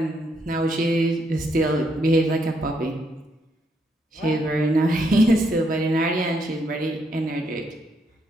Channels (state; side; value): normal; both; correlation 0.75